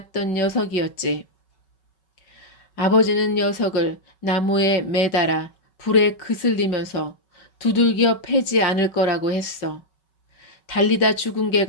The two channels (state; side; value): late; right; 5.3 ms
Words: 녀석이었지. 아버지는 녀석을 나무에 매달아 불에 그슬리면서 두들겨 패지 않을 거라고 했어. 달리다 죽은